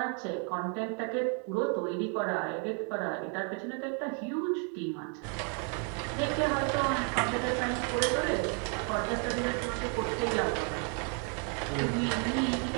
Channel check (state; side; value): quieter; left; 39.9 dB